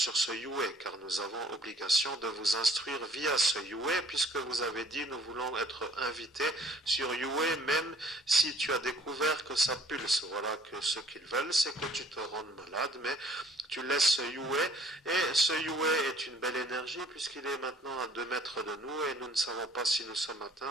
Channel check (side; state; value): both; normal; correlation 0.56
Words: ce UA, car nous avons obligation de vous instruire via ce UA, puisque vous avez dit nous voulons être invités sur UA, même si tu as découvert que ça pulse. Voilà que ce qu'ils veulent, c'est que tu te rendes malade, mais tu laisses ce UA, et ce UA est une belle énergie, puisqu'il est maintenant à 2 mètres de nous, et nous ne savons pas si nous sommes